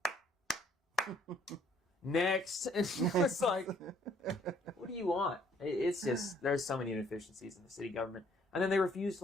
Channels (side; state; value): both; normal; correlation 0.62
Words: Next. And it's like, what are do you want? It's just, there's so many inefficiencies in the city government. And then they refuse to,